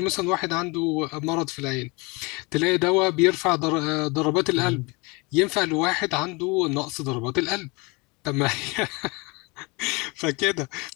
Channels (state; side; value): quieter; right; 27.3 dB